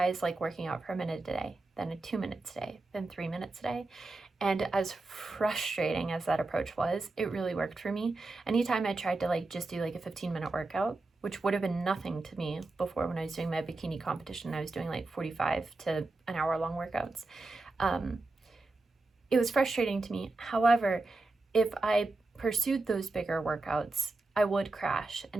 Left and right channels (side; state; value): left; quieter; 3.3 dB